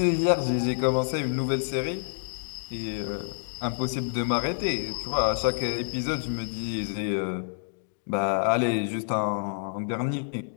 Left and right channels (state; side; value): silent; right; digital silence